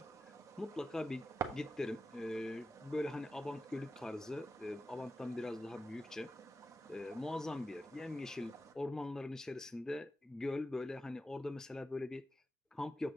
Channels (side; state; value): both; normal; correlation 0.91